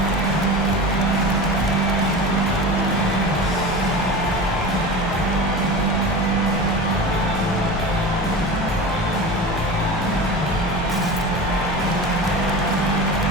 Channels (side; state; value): both; normal; correlation 0.31